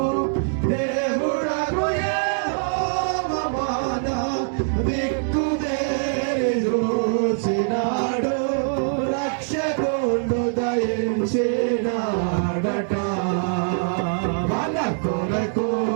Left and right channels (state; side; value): silent; left; digital silence